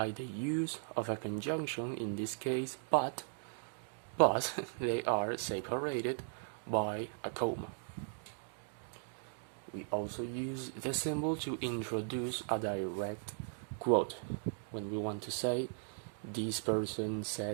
the use of a conjunction, in this case, but they are separated by a comma. We also use the symbol to introduce a direct quote. When we want to say, this person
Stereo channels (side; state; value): left; silent; digital silence